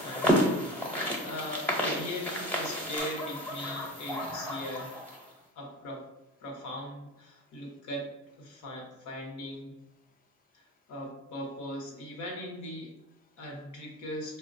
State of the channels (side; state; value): both; normal; correlation 0.32